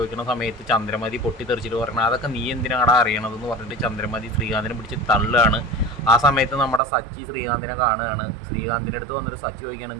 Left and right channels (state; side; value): drops out; left; at 6.8 s